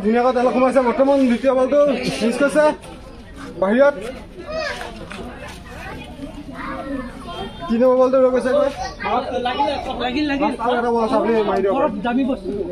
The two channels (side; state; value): both; identical; correlation 1.00